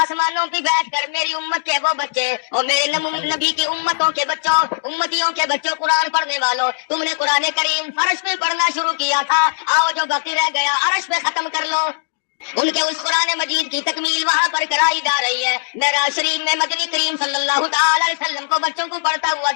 پہ بیٹھ کر میری امت کے وہ بچے اور میرے نبی کی امتوں کے بچوں، امتیوں کے بچوں، قرآن پڑھنے والوں، تم نے قرآن کریم فرش پہ پڑھنا شروع کیا تھا، آؤ جو باقی رہ گیا عرش پہ ختم کر لو۔ ان کے اس قرآن مجید کی تکمیل وہاں پر کرائی جا رہی ہے۔ معراج شریف میں مدنی کریم صلی اللہ تعالی علیہ وسلم کو بچوں کو پڑھتا ہوا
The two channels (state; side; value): quieter; right; 38.4 dB